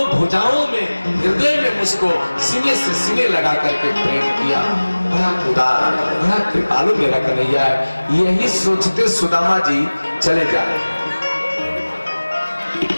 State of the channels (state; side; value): inverted; both; correlation -1.00